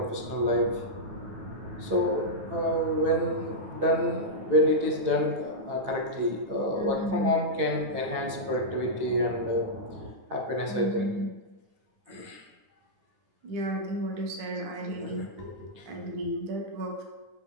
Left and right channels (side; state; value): left; late; 9.4 ms